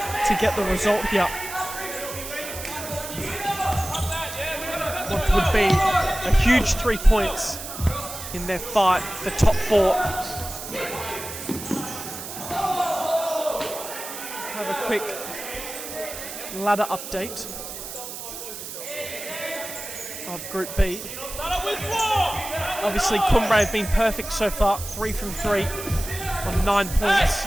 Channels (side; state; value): right; noise; hiss, 9 dB below the sound